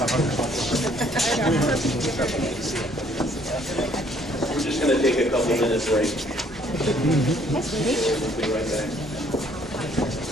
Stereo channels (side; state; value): both; normal; correlation 0.62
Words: just going to take a couple minute break. We'll be right back.